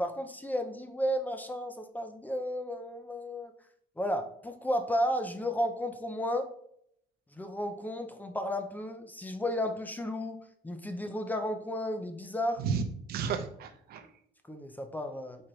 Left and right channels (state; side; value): normal; both; correlation 0.68